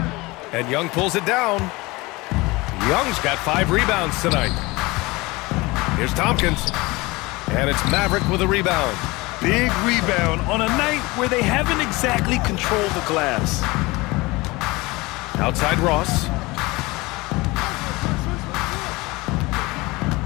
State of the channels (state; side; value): quieter; right; 22.8 dB